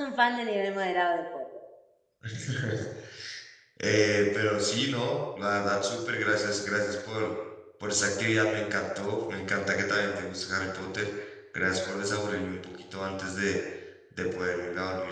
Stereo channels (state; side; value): identical; both; correlation 1.00